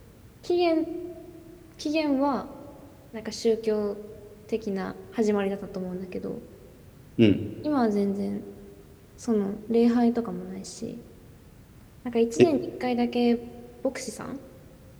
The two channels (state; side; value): identical; both; correlation 1.00